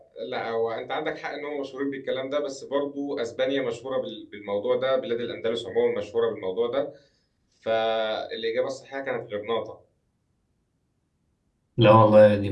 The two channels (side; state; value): both; identical; correlation 1.00